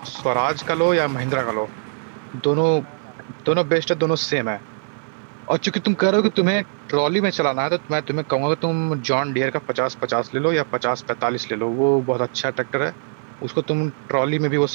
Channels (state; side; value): silent; left; 59 dB below the other